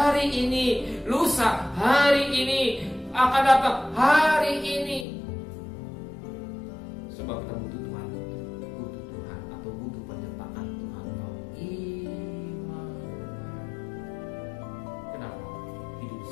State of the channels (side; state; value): right; drops out; at 5.1 s